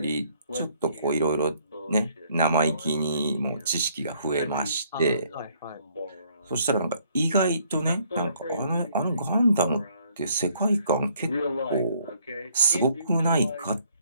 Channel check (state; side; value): inverted; both; correlation -0.65